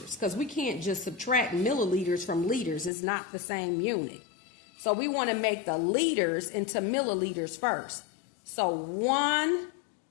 because we can't just subtract milliliters from liters. It's not the same unit. So we want to make the liters into milliliters first. So 2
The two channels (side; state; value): right; drops out; at 2.9 s